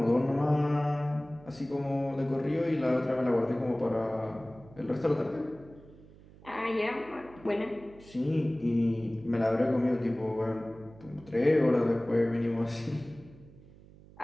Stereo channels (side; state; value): right; noise; hum, 22 dB below the sound